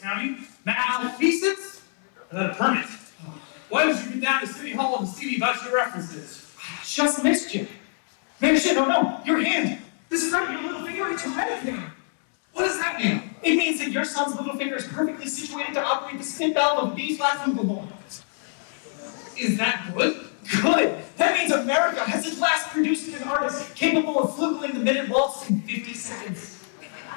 Malfeasance? Without a permit. Why did you get down to City Hall to see me about your references? Just missed you. Beresh, oh no, your hand. This is not your little finger, it's your red finger. What does that mean? It means that your son's little finger is perfectly situated to operate the spin valve of a B-flat flugelhorn. Is that good? Good! That means America has at last produced an artist capable of flugling the minute waltz in 50 seconds.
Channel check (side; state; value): right; silent; 61 dB below the other